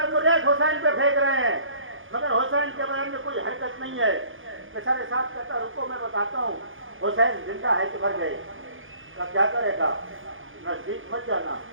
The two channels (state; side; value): late; left; 0.58 ms